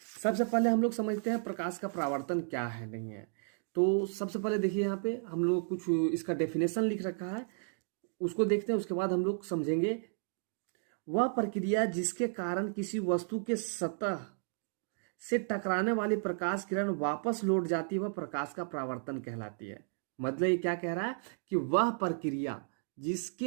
सबसे पहले हम लोग समझते हैं प्रकाश का परावर्तन क्या है, नहीं है। तो सबसे पहले देखिए यहाँ पे हम लोग कुछ इसका डेफिनेशन लिख रखा है, उसको देखते हैं, उसके बाद हम लोग समझेंगे। वह प्रक्रिया जिसके कारण किसी वस्तु के सतह से टकराने वाली प्रकाश किरण वापस लौट जाती है वह प्रकाश का परावर्तन कहलाती है। मतलब ये क्या कह रहा है कि वह प्रक्रिया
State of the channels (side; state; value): left; silent; digital silence